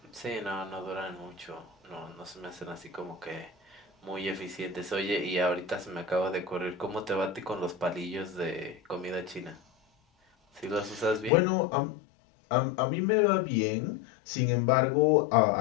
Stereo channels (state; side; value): drops out; right; at 11.3 s